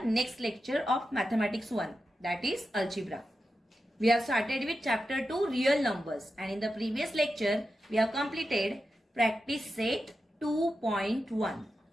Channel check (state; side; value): normal; both; correlation 0.90